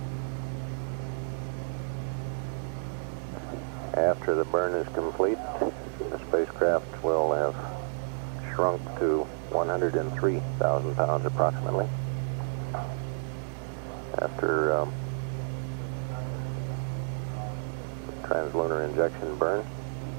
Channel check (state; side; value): silent; left; digital silence